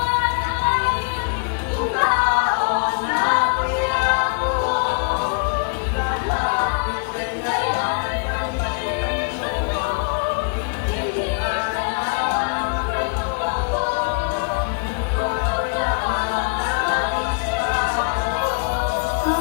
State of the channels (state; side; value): quieter; right; 37.1 dB